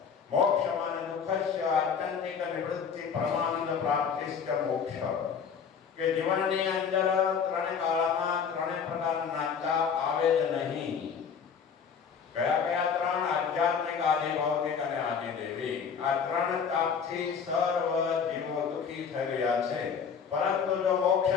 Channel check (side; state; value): right; quieter; 6.6 dB